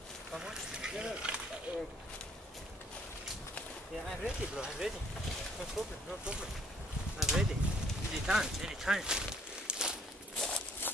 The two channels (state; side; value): normal; both; correlation 0.63